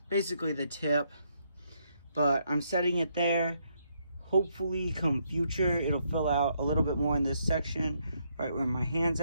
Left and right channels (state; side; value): inverted; both; correlation -0.75